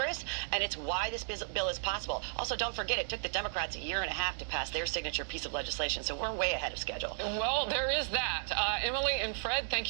and it's why this bill is possible. Also, don't forget, it took the Democrats a year and a half to pass their signature piece of legislation, so we're way ahead of schedule. Well, there is that. Emily and Fred, thank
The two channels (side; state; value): left; silent; digital silence